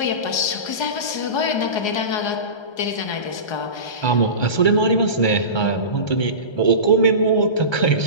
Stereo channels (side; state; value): right; late; 1.3 ms